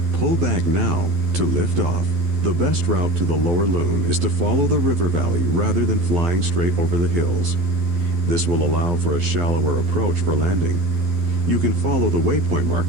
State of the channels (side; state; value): left; late; 12 ms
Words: Pull back now to lift off. The best route to the Lower Loon is to follow the river valley rather than flying straight over the hills. This will allow for a shallower approach for landing. You can follow the waypoint